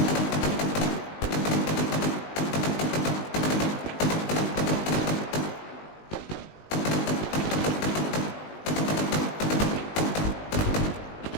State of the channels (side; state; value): right; late; 19 ms